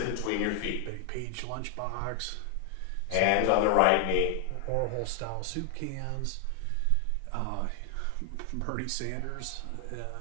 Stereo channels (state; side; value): different; both; correlation 0.00